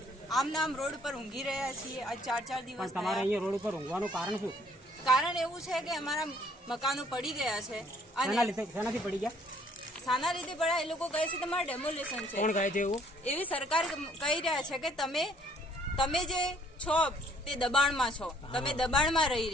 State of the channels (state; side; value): normal; both; correlation 0.62